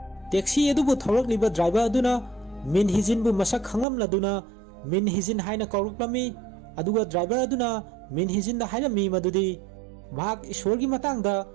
taxi adubu tholaklliba driver aduna min hijin bu masak khanglamladuna min hijin haina kawraklami aduga driver aduna min hijin da hairami madudi mahak ishorgi matangda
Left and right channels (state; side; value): drops out; left; at 3.9 s